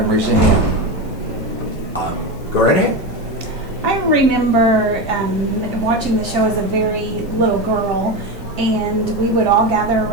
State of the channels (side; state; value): both; normal; correlation 0.18